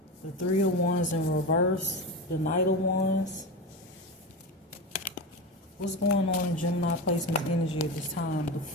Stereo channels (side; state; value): both; normal; correlation 0.22